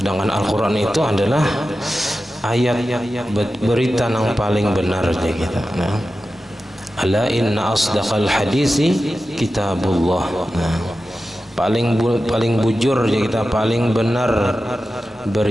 Al-Quran itu adalah ayat berita yang paling benar je kita. Nah, ala inna asdaqal hadisi kitabullah. Nah, paling bujur je kita, paling benar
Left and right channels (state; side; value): normal; both; correlation 0.93